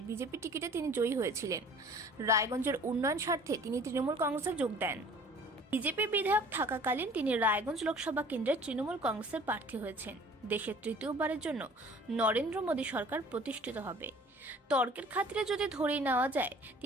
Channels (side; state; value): both; normal; correlation 0.49